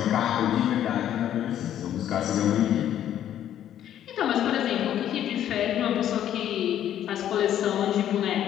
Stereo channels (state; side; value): quieter; right; 10.9 dB